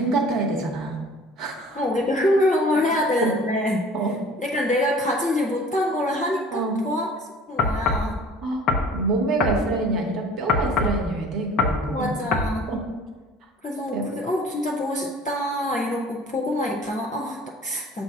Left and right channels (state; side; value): normal; both; correlation 0.47